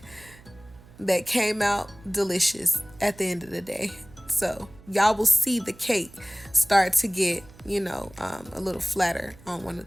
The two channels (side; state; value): right; noise; hum, 23 dB below the sound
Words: that came out delicious at the end of the day. So y'all will see the cake start to get, you know, a little flatter on one of